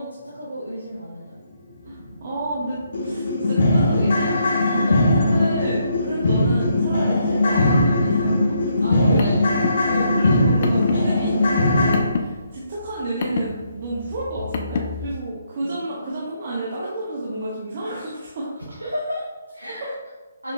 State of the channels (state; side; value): inverted; both; correlation -0.75